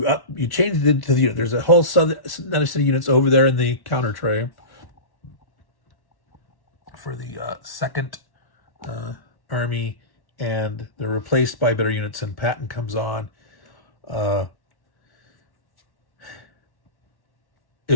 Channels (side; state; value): right; late; 1.1 ms